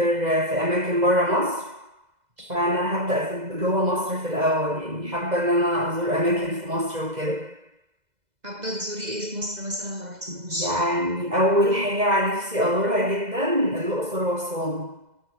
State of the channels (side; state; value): left; late; 2.0 ms